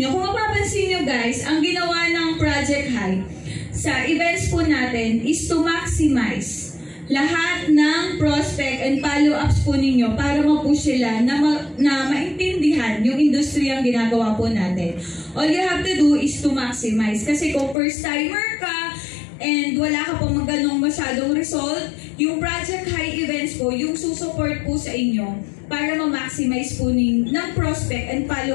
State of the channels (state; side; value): drops out; right; at 17.8 s